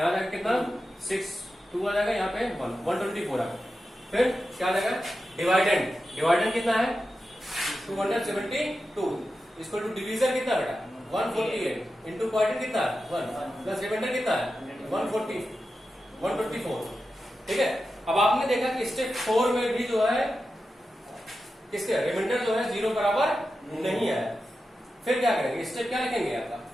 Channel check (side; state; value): both; normal; correlation 0.91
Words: आएगा कितना 6, 2 आ जाएगा, यहाँ पे 124 आएगा। फिर क्या आ जाएगा, डिवाइडेंड कितना है 272, इसको टू डिवीजन कितना बेटा 148 इंटू क्वाड्रेंट कितना है 1 प्लस रिमाइंडर कितना है 124, ठीक है। अब आपने देखा कि स्टेप 4 में भी जो है किसके रिमाइंडर जो है 0 बराबर नहीं है। फिर क्या करेंगे, स्टेप क्या लिखेंगे आपका,